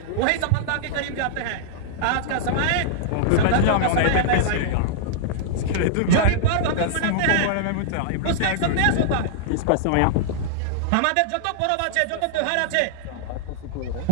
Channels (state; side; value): different; both; correlation -0.01